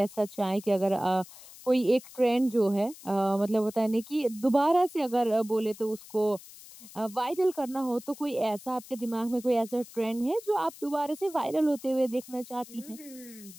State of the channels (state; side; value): noise; left; hiss, 18 dB below the sound